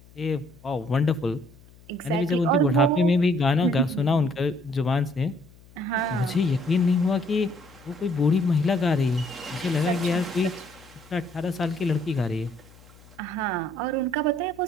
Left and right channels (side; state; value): left; noise; hum, 25 dB below the sound